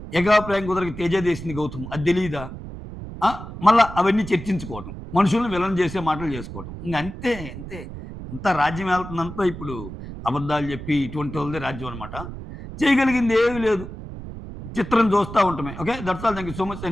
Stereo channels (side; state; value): right; noise; rumble, 11 dB below the sound